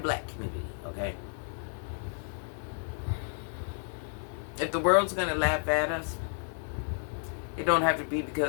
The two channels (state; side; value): silent; right; digital silence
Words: community, okay? If the world's going to laugh at us, it don't have to be